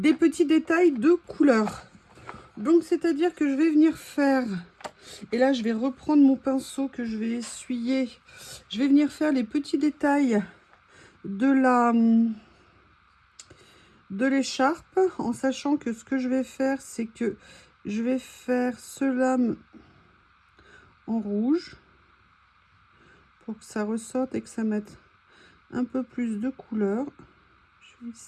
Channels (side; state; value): both; identical; correlation 1.00